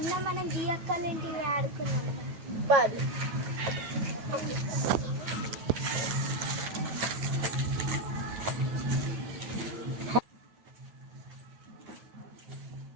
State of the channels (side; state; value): left; late; 9.2 ms